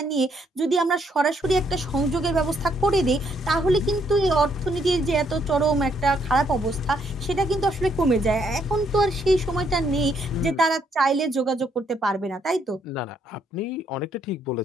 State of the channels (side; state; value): both; normal; correlation 0.72